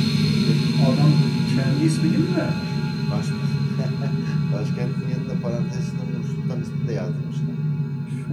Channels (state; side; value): identical; both; correlation 1.00